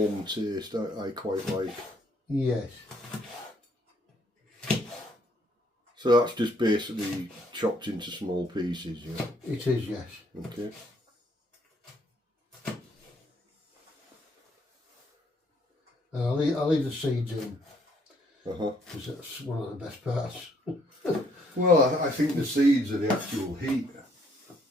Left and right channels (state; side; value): normal; both; correlation 0.67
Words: taste. I quite like. Yes. So that's just basically chopped into small pieces, yeah. It is, yes. Okay. And I'll leave the seeds in, Uh-huh. because that's one of the best parts. Well, I think the seeds are the actual heat,